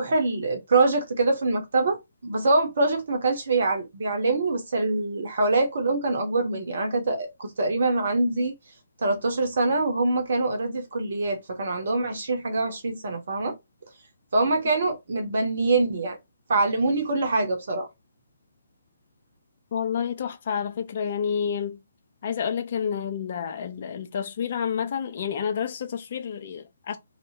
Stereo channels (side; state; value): both; inverted; correlation -0.73